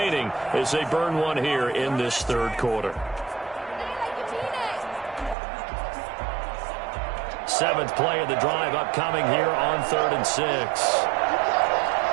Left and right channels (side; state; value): left; drops out; at 5.4 s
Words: as they burn 1 here in this 3rd quarter. 7th play of the drive upcoming here on 3rd and 6.